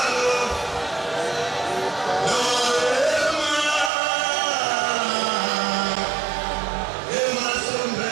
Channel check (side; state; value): left; drops out; at 3.9 s